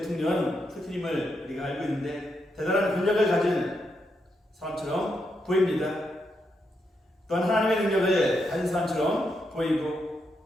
푸틴임을 우리가 알고 있는데 대단한 권력을 가진 사람처럼 보입니다. 또한 하나님의 능력을 가진 사람처럼 보이고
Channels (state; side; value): normal; both; correlation 0.82